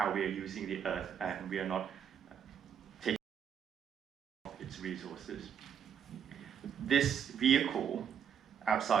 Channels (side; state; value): left; quieter; 8.1 dB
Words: we are using the earth, and we are not taking its resources. This vehicle